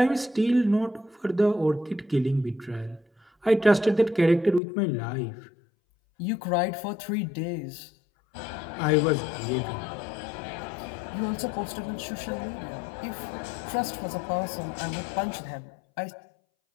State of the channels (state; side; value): drops out; right; at 4.6 s